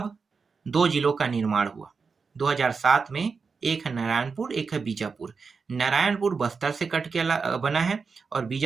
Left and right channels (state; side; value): quieter; left; 5.0 dB